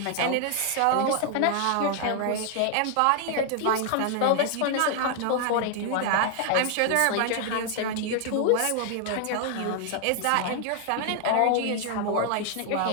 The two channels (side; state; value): both; different; correlation 0.00